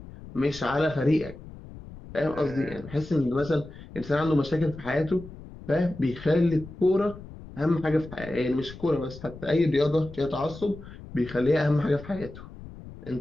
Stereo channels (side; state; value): left; noise; rumble, 15 dB below the sound